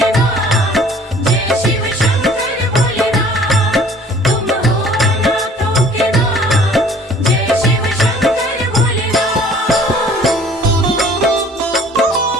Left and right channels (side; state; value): both; normal; correlation 0.53